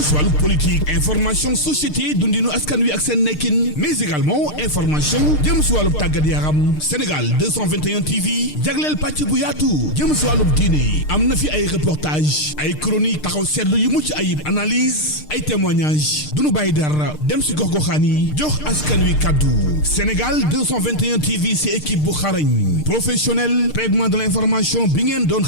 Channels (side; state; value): right; late; 6.6 ms